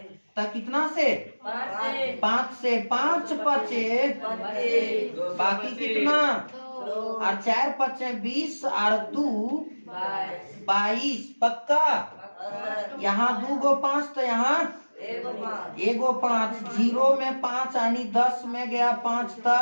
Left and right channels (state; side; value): inverted; both; correlation -1.00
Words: तो कितना से? 5 से। 5 पचे, बाकी कितना? और 4 पचे 20 और 2 22। पक्का? यहाँ 2 गो 5, तो यहाँ एगो 5। 0 में 5 यानी 10 में गया 5